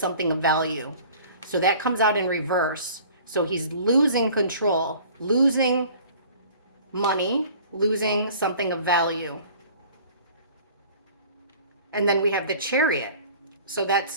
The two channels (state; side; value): inverted; both; correlation -0.48